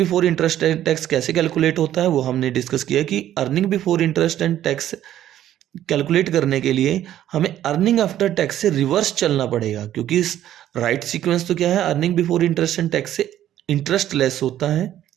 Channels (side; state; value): left; quieter; 12.0 dB